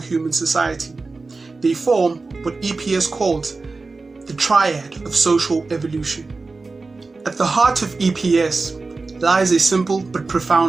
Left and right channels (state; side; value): quieter; left; 3.8 dB